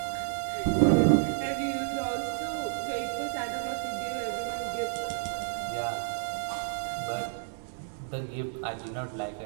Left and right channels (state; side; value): silent; left; 57 dB below the other